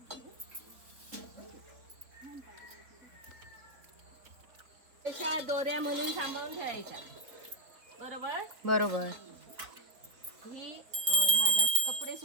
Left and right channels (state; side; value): late; left; 3.9 ms